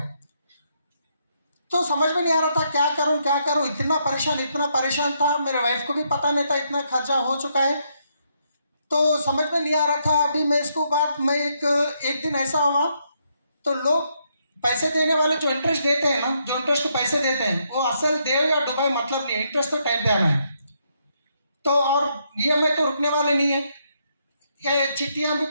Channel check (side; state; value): both; inverted; correlation -0.76